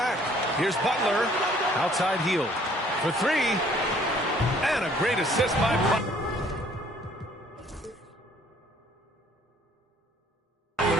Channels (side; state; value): both; normal; correlation 0.59